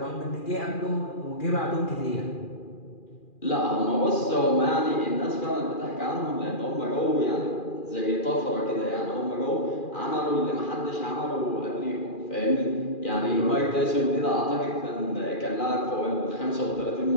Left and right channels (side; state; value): right; late; 2.4 ms